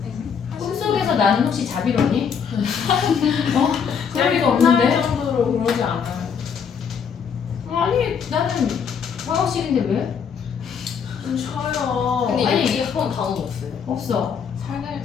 꿈속에서 나는 혹시 자비로니? 어? 그럴 리가 없는데? 정도로 그러지 않아요. 아니 나는 방학식인데 왜? 좀 쉬어요. 근데 아니, 여기 학원 단원 없어요. 없어. 살날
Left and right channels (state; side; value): quieter; right; 6.9 dB